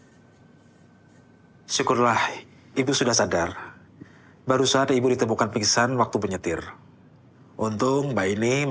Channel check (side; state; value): both; identical; correlation 1.00